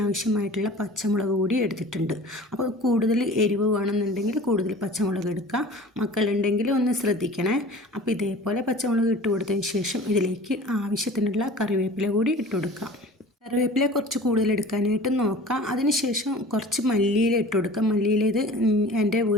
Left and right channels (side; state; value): both; normal; correlation 0.42